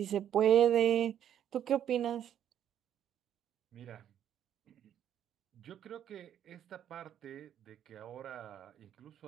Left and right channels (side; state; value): left; quieter; 10.1 dB